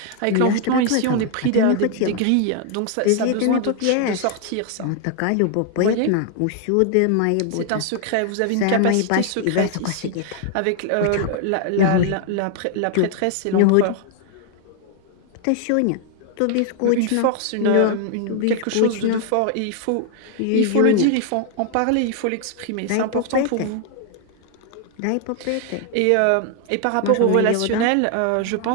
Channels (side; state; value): both; different; correlation 0.00